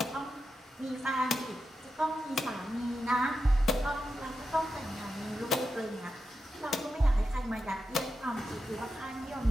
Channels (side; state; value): both; normal; correlation 0.88